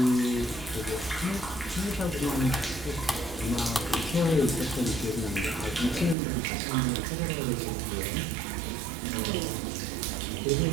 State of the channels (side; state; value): left; drops out; at 6.2 s